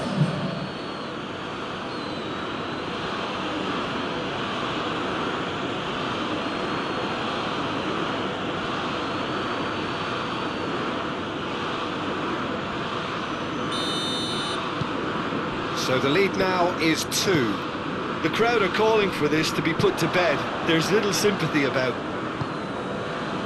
So the lead now is 2. The crowd are calling for this to be put to bed. There's little sympathy about.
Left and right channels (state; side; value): identical; both; correlation 1.00